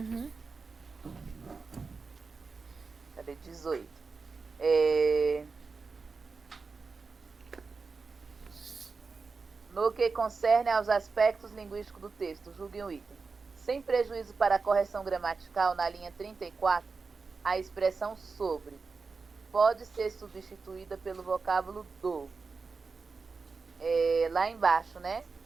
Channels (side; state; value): left; quieter; 4.5 dB